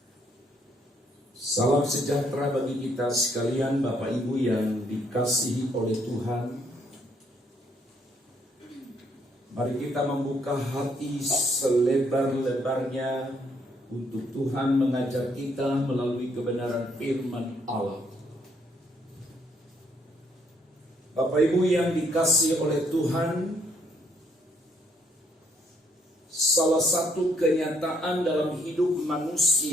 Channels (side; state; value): both; normal; correlation 0.69